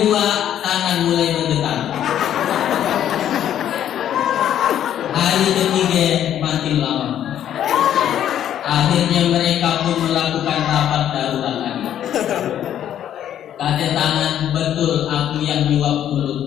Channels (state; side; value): quieter; right; 10.6 dB